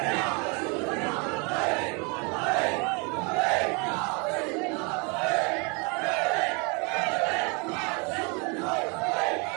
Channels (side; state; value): left; quieter; 32.3 dB